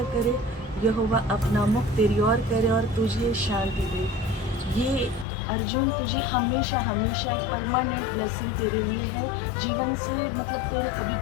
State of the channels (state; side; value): drops out; right; at 5.2 s